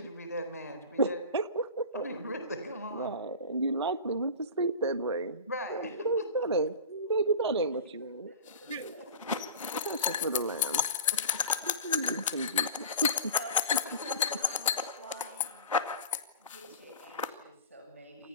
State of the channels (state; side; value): inverted; both; correlation -0.33